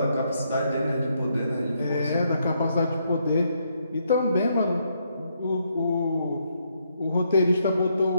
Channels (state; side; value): inverted; both; correlation -0.76